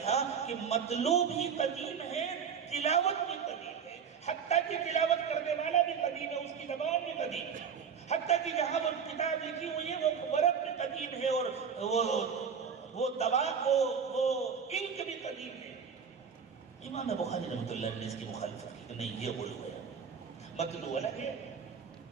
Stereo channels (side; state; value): left; quieter; 6.8 dB